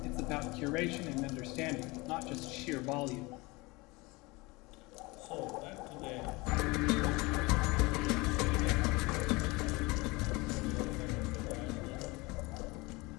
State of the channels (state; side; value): quieter; right; 24.0 dB